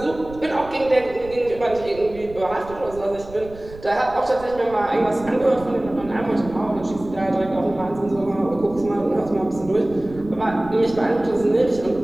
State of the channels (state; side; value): noise; right; rumble, 17 dB below the sound